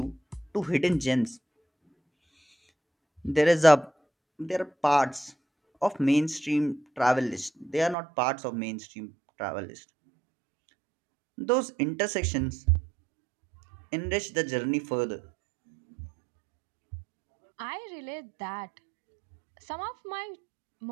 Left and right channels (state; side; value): drops out; left; at 8.0 s